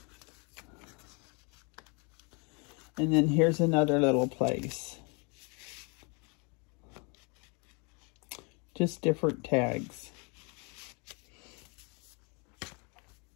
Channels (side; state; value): right; quieter; 33.3 dB